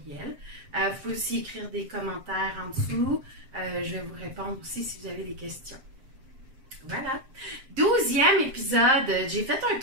Vous pouvez aussi écrire des commentaires en dessous. Je vais vous répondre aussi si vous avez des questions. Voilà. 12e épisode. J'ai fait un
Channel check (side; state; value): left; late; 7.5 ms